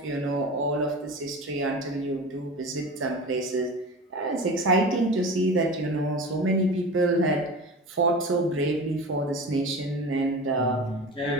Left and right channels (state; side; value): normal; both; correlation 0.32